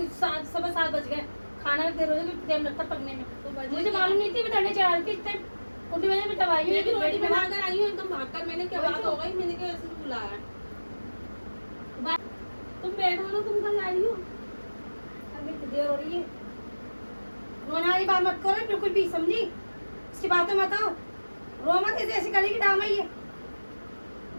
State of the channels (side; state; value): both; inverted; correlation -1.00